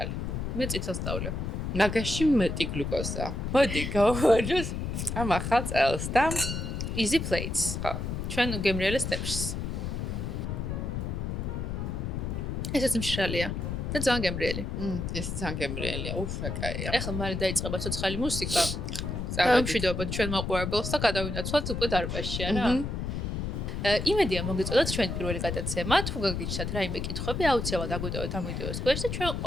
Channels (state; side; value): noise; left; rumble, 3 dB below the sound